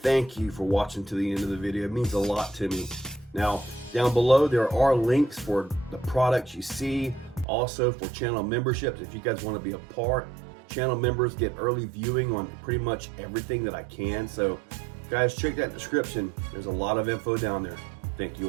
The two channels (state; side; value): drops out; left; at 7.5 s